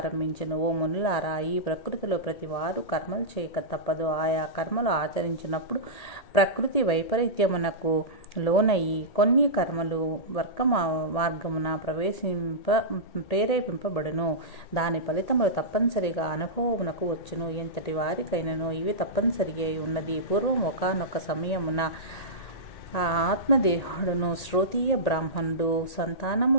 ఓ మునులారా, ఈ ప్రకృతిలో ప్రతి వారు కర్మలు చేయక తప్పదు. ఆయా కర్మలు ఆచరించినప్పుడు ప్రకృతి వైపరీత్యమునకు లోనయ్యి కొన్ని కర్మలు వర్గ మార్గమున ప్రేరేపింపబడును. దాని ఫలితములు తప్పనిసరిగా అనుభవమునకు వచ్చును. ఎంతటి వారికైనను ఇవి తప్పనిసరి అయి ఉన్నది. పూర్వం ఒకానొక సమయమున ఆ ఆత్మదేవుడును శ్రోతీయ బ్రాహ్మణుడు సంతానము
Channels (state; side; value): late; right; 1.8 ms